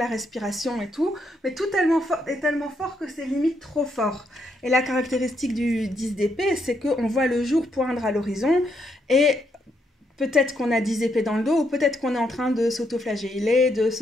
respiration et tout, mais tout est tellement fort que c'est limite trop fort. Et la caractéristique du 10 d'épée, c'est qu'on voit le jour poindre à l'horizon, et... peut-être qu'on a 10 épées dans le dos, ou peut-être qu'on est en train de s'auto-flageller, de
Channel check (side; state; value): both; normal; correlation 0.77